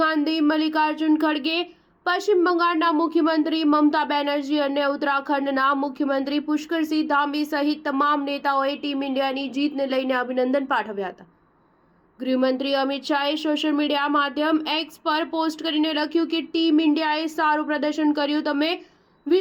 ગાંધી, મલ્લિકાર્જુન ખડગે, પશ્ચિમ બંગાળના મુખ્યમંત્રી મમતા બેનર્જી અને ઉત્તરાખંડના મુખ્યમંત્રી પુષ્કરસિંહ ધામી સહિત તમામ નેતાઓએ ટીમ ઇન્ડિયાની જીતને લઈને અભિનંદન પાઠવ્યા હતા। ગૃહમંત્રી અમિત શાહે સોશિયલ મીડિયા માધ્યમ એક્સ પર પોસ્ટ કરીને લખ્યું કે ટીમ ઇન્ડિયાએ સારું પ્રદર્શન કર્યું। તમે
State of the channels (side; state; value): both; identical; correlation 1.00